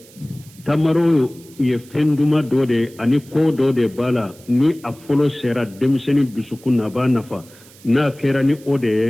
tamaro ye fenduma do de ani ko do de bala ni a folo sera demseni dusukuna ba nafa na kera ni ode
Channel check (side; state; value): right; noise; hiss, 24 dB below the sound